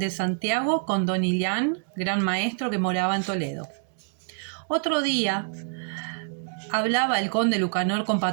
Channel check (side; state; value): left; silent; digital silence